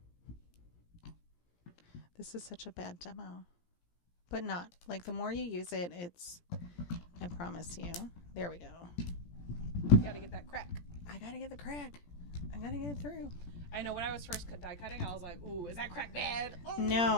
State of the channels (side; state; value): right; late; 17 ms